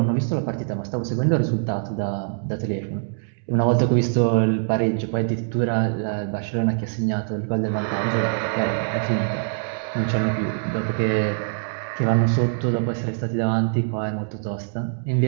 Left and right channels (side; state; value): left; silent; digital silence